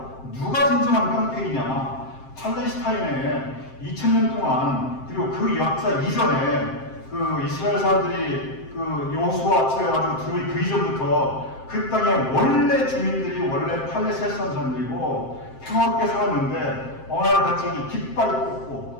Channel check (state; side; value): late; right; 7.6 ms